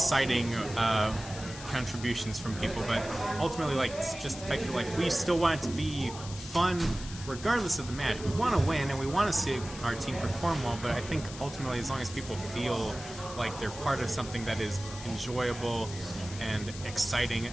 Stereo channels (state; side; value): noise; left; hiss, 13 dB below the sound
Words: contributions from people. But ultimately, like, it's just the fact that, like, we still want it to be fun regardless of the match. We want to win and we want to see our team perform well, but I think ultimately, as long as people feel like they're part of something that is enjoyable and exciting,